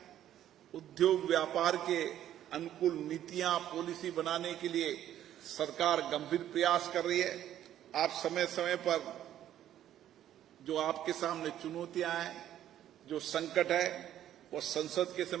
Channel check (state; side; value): quieter; left; 11.6 dB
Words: उद्योग व्यापार के अनुकूल नीतियां, पॉलिसी बनाने के लिए सरकार गंभीर प्रयास कर रही है। आप समय समय पर जो आपके सामने चुनौतियां हैं, जो संकट है, वो संसद के